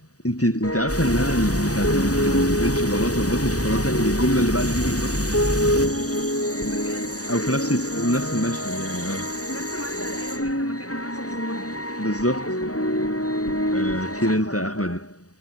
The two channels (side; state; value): right; late; 0.66 ms